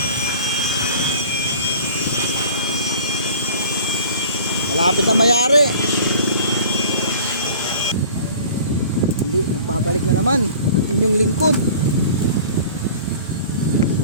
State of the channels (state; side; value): inverted; both; correlation -0.44